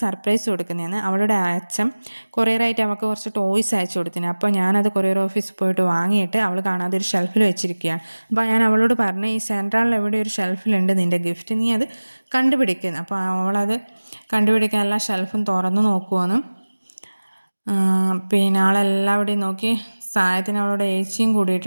സർപ്രൈസ് കൊടുക്കുന്നതാണ്. അവളുടെ അച്ഛൻ കൊറിയറായിട്ട് അവൾക്ക് കുറച്ച് ടോയ്സ് അയച്ചു കൊടുത്തിന്. അപ്പോൾ ഞാനത് കൊറിയർ ഓഫീസിൽ പോയിട്ട് വാങ്ങിയിട്ട് അവൾ കാണാതെ ഒരു ഷെൽഫിൽ വെച്ചിരിക്കുകയാണ്. അപ്പോൾ ഞാൻ അവളോട് പറഞ്ഞു, ഈ സെൻട്രലിൽ എവിടെ ഒരു ഷെൽഫിലുണ്ട് നിൻ്റെ ഗിഫ്റ്റ്, നീ അത് കണ്ടുപിടിക്കുന്നു. അപ്പോൾ അവളത് കണ്ടുപിടിക്കാൻ എല്ലാ ഷെൽഫും തുറന്നു നോക്കുവാണ്. പിന്നെ ആളെല്ലാവിടെയും നോക്കി. സാധനത്തിന് അവളോട് ഏച്ചിയും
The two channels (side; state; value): both; inverted; correlation -1.00